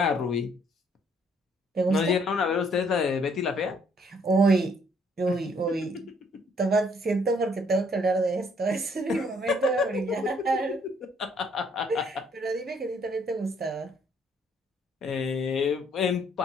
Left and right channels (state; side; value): normal; both; correlation 0.66